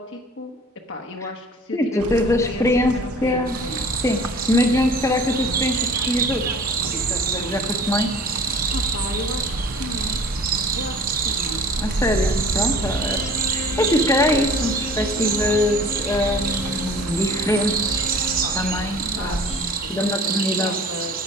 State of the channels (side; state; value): both; normal; correlation 0.47